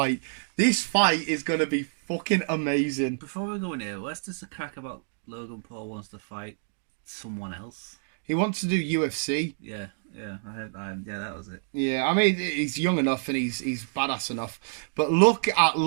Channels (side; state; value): left; silent; digital silence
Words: This fight is gonna be fucking amazing. Before we go in here, let's just a crack about Logan Paul wants to fight someone else. He wants to do UFC. Yeah, I heard that. Yeah, that was it. Yeah, I mean, he's young enough and he's badass enough. But look at